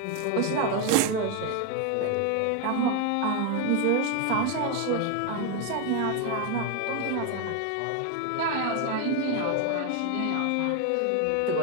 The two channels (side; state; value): both; different; correlation 0.01